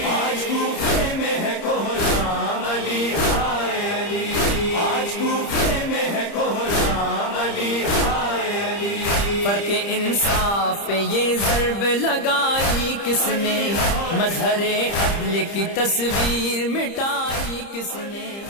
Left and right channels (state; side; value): late; right; 30 ms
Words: آج کوفے میں ہے کوھرام علی ہائے علی آج کوفے میں ہے کوھرام علی ہائے علی فرق انصاف پہ یہ ضرب لگائی کس نے، مظہر عدل کی تصویر مٹائی کس نے،